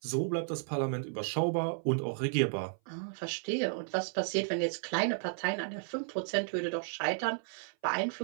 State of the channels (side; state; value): left; silent; 55 dB below the other